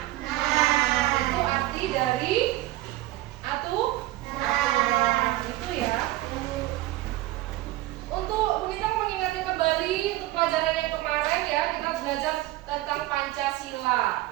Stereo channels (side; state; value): left; quieter; 17.0 dB